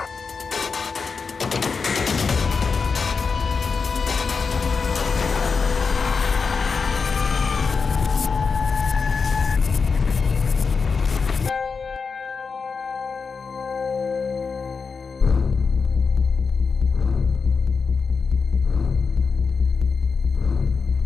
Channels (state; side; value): quieter; right; 5.1 dB